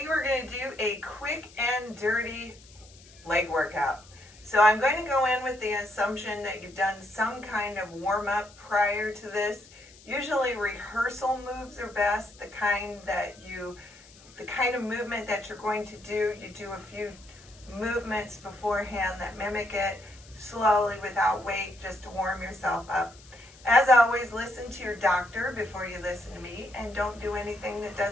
we're going to do a quick and dirty leg workout. So I'm going to go in with the assumption that you've done some kind of warm-up prior to this. Usually rehearsal moves are best, the kind of movement that you're going to do. You do a few movements beforehand that mimic it slowly without weight, just to warm yourself up. As always, listen to your doctor before you listen to me, and don't do anything that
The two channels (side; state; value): left; noise; hiss, 24 dB below the sound